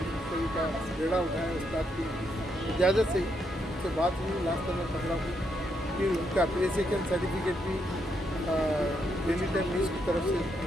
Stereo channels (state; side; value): normal; both; correlation 0.78